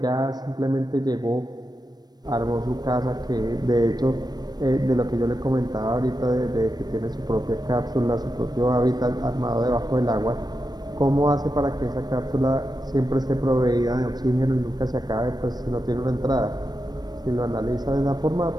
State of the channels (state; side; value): late; left; 0.19 ms